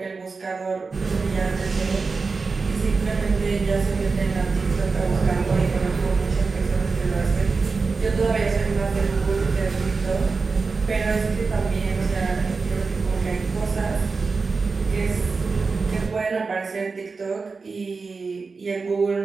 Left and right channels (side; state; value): left; quieter; 4.4 dB